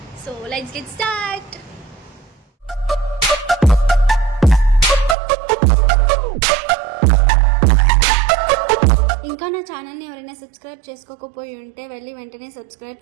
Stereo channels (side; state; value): left; drops out; at 5.2 s